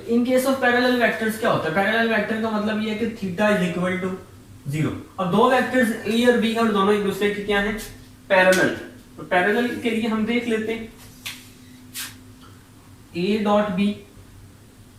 in case of parallel vectors क्या होता है? पैरेलल वेक्टर का मतलब ये है कि थीटा इज इक्वल टू 0। अब दो वेक्टर्स ए और बी और दोनों एक दूसरे के क्या है? पैरेलल। तो पैरेलल के लिए हम देख लेते हैं ए डॉट बी,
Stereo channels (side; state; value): both; identical; correlation 1.00